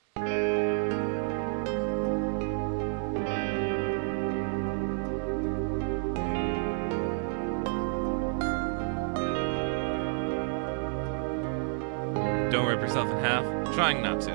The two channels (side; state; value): left; silent; digital silence